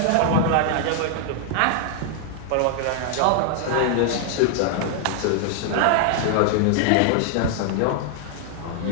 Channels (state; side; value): different; both; correlation 0.00